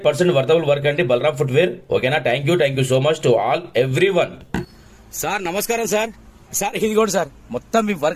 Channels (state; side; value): identical; both; correlation 1.00